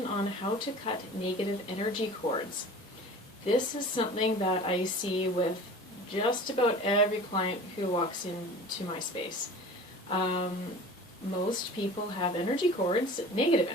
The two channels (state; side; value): normal; both; correlation 0.40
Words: on how to cut negative energy cords. This is something that I see with just about every client who walks into my space. Most people have energy cords, negative